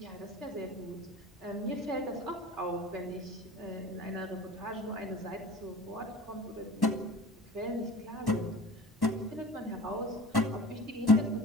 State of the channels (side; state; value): both; normal; correlation 0.39